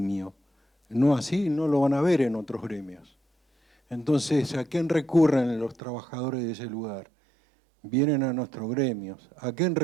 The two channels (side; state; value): left; drops out; at 5.8 s